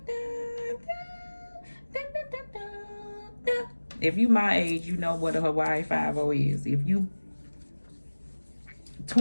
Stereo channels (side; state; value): both; inverted; correlation -1.00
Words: If you my age, you know what a Hawaii 5-0 is. If you